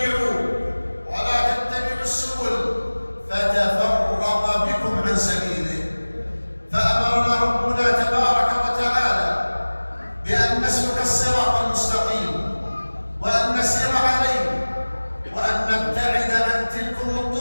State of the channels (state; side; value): inverted; both; correlation -1.00